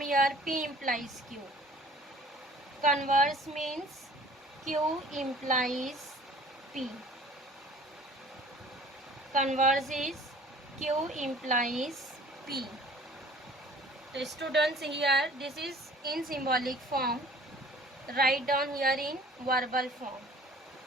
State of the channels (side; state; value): both; normal; correlation 0.50